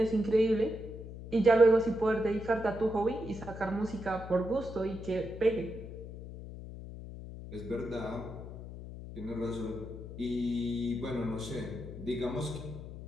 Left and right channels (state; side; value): noise; left; hum, 11 dB below the sound